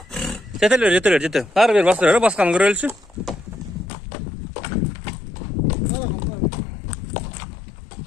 Çetel. Har bir bastırıyor, baskanı görülsün.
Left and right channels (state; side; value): drops out; right; at 3.9 s